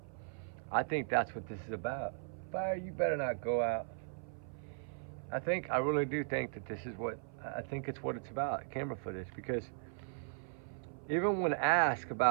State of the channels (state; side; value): silent; left; 53 dB below the other